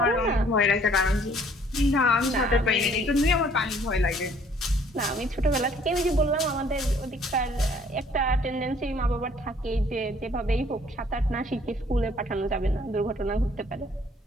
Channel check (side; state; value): both; normal; correlation 0.59